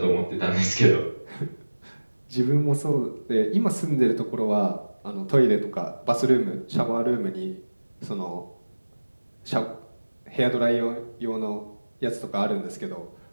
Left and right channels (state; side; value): inverted; both; correlation -1.00